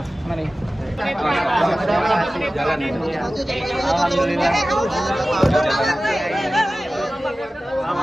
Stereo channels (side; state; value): both; normal; correlation 0.96